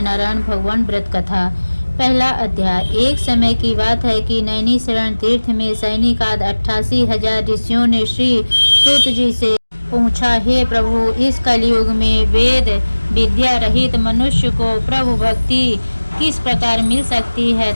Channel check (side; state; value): both; inverted; correlation -1.00